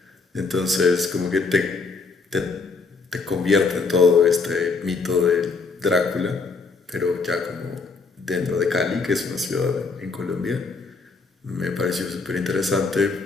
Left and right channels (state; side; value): quieter; right; 4.4 dB